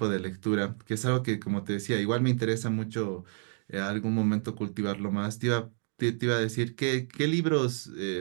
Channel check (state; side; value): silent; left; 57 dB below the other